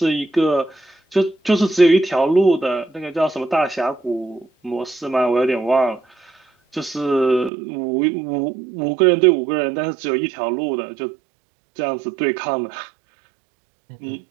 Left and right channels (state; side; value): drops out; left; at 7.5 s